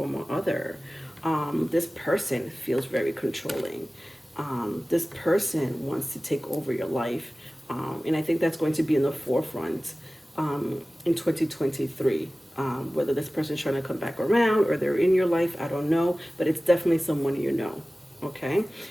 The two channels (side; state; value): both; normal; correlation 0.97